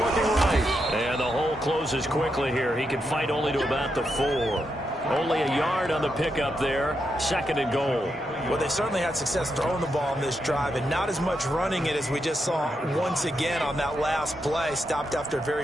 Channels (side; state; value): both; normal; correlation 0.83